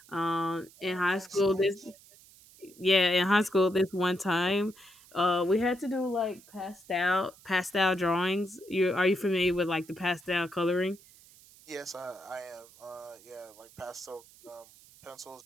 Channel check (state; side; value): noise; right; hiss, 24 dB below the sound